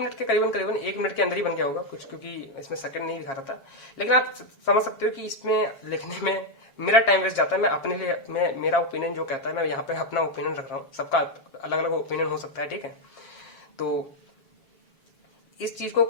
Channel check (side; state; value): right; late; 7.0 ms